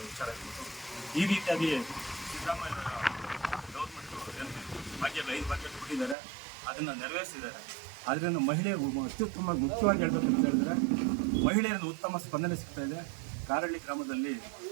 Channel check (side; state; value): left; drops out; at 6.2 s